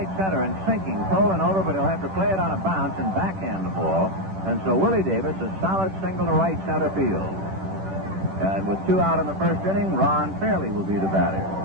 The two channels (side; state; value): left; late; 10 ms